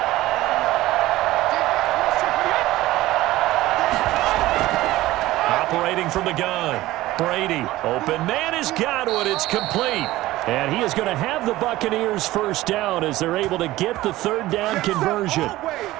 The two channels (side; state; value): left; quieter; 16.9 dB